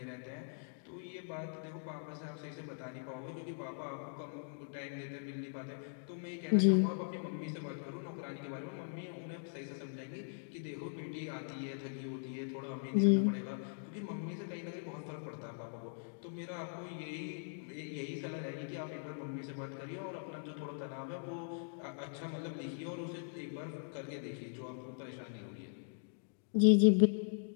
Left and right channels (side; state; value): right; silent; digital silence